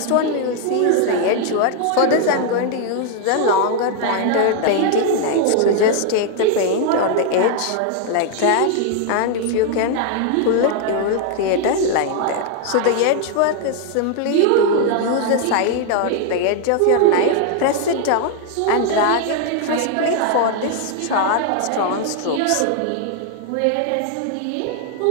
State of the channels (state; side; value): different; both; correlation 0.00